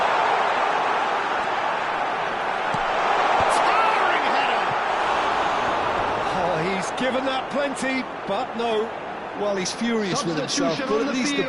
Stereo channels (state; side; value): identical; both; correlation 1.00